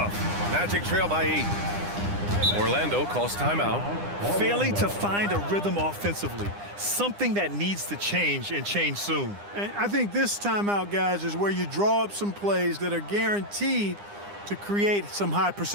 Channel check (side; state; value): left; late; 9.9 ms